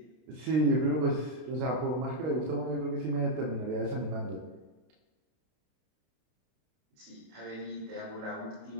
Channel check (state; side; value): late; left; 32 ms